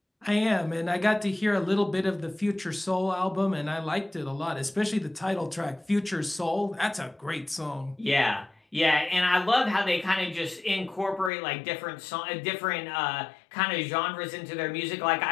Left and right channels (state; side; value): drops out; right; at 11.3 s